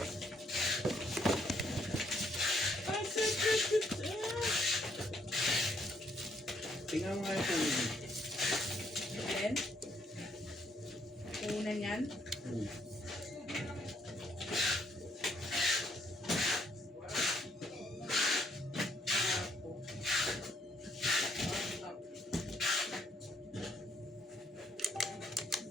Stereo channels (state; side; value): normal; both; correlation 0.70